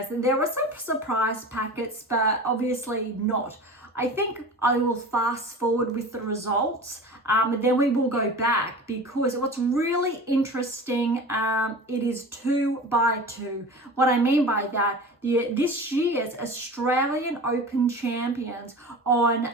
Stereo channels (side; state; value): both; normal; correlation 0.35